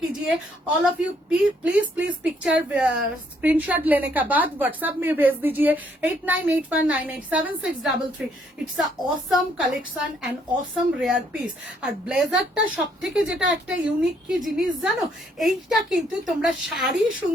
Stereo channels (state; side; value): normal; both; correlation 0.69